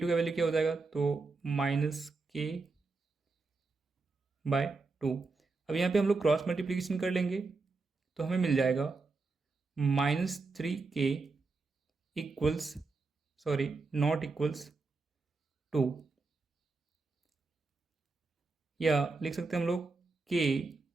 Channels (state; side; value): quieter; left; 3.9 dB